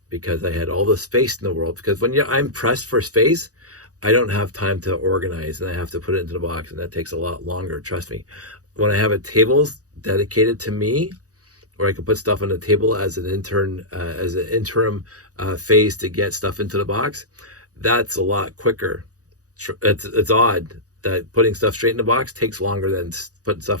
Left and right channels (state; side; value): late; left; 0.67 ms